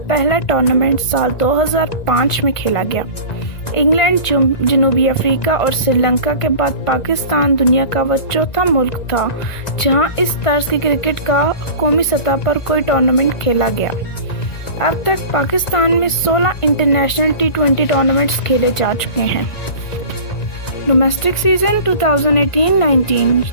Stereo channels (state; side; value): late; right; 1.9 ms